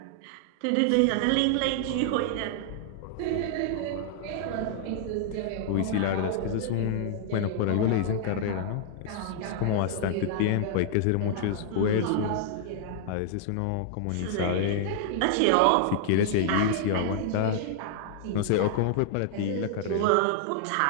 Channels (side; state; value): both; different; correlation -0.01